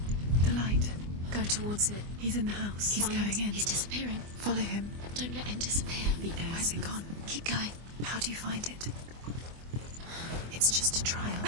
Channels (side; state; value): left; late; 24 ms